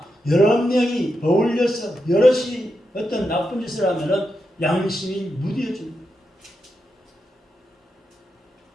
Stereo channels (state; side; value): normal; both; correlation 0.86